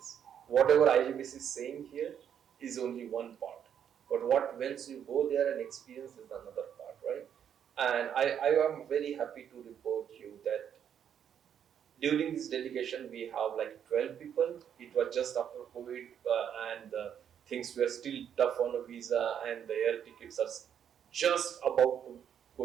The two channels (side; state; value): left; quieter; 8.8 dB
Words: Whatever IJBC is saying here is only one part. But what once you go there and experience is another part, right? And I am very happy to report you that during this delegation we have like 12 people. It was just after COVID, and things were still tough on a visa, and the air tickets are just about to